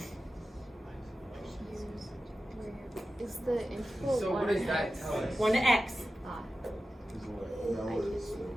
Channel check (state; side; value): normal; both; correlation 0.93